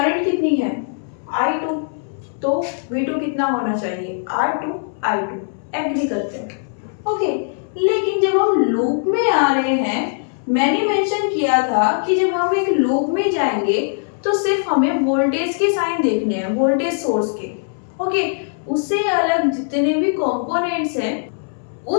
कितनी है, I2, तो V2 कितना होना चाहिए, R2 I2। एग्री करते हैं। ओके, लेकिन जब हम लूप में आ रहे हैं, मैंने मेंशन किया था कि जब हम एक लूप में जाएंगे तो सिर्फ हमें वोल्टेज के साइन देखने हैं, वोल्टेज सोर्स के। ओके, उससे अलग जितने भी कंपोनेंट्स हैं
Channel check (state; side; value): silent; right; 65 dB below the other